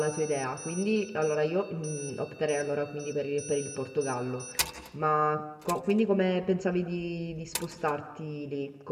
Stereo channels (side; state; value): both; identical; correlation 1.00